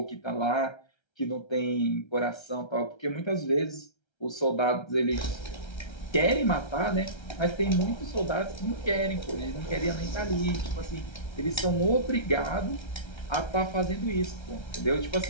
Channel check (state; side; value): late; right; 1.3 ms